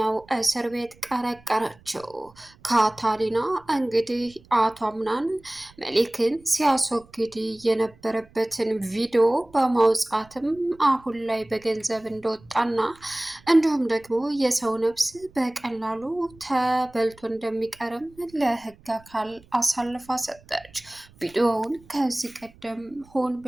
እስር ቤት ቀረቀረችው። ካታሪና እንግዲህ አቶ አምናን መሊክን ሲያስወግድ የነበረበትን ቪዲዮ በማውጣትም አሁን ላይ በገንዘብ እንደወጣና እንዲሁም ደግሞ የሰው ነፍስ በቀላሉ ተበልቶ እንደሚቀርም ለሕግ አካል አሳልፋ ሰጠች። ቪዲዮውን ከዚህ ቀደም ሆን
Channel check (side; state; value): right; noise; rumble, 26 dB below the sound